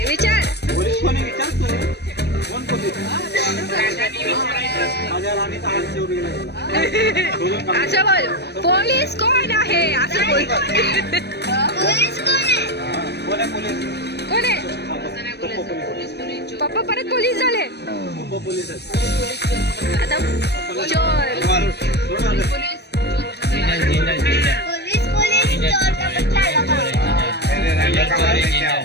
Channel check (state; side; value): late; right; 0.49 ms